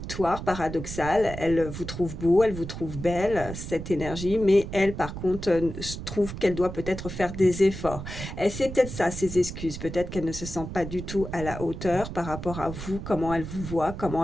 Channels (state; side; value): noise; right; rumble, 8 dB below the sound